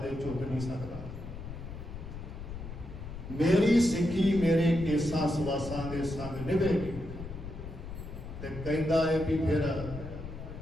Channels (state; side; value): noise; left; rumble, 10 dB below the sound